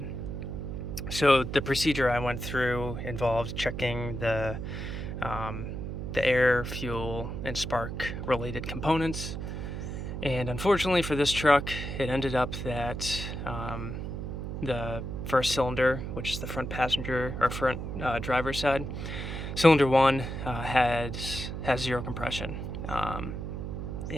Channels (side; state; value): right; noise; hum, 5 dB below the sound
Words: So the procedure I went through involved checking the air, fuel, and spark related components. And unfortunately for this truck, it ended up that the first cylinder, which is the front passenger or front driver's side, cylinder 1 has zero compression.